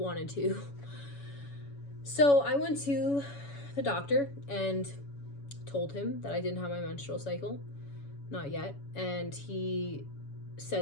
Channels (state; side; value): late; right; 7.1 ms